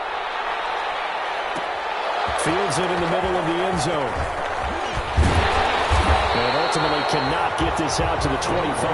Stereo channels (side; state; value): both; identical; correlation 1.00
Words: Fields it in the middle of the end zone. And ultimately cannot get this out to the